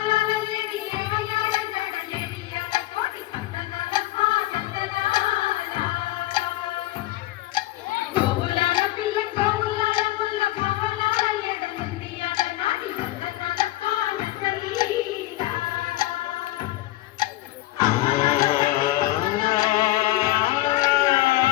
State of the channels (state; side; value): quieter; right; 16.8 dB